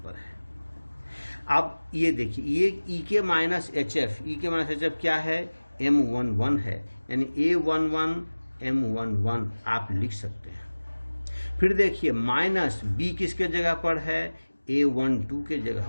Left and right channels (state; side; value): inverted; both; correlation -1.00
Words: पर है। अब ये देखिए ये E के माइनस HF, E के माइनस HF क्या है, M11 है, यानी A11 M11 आप लिख सकते हैं। फिर देखिए माइनस B किसके जगह पर है, A12 के जगह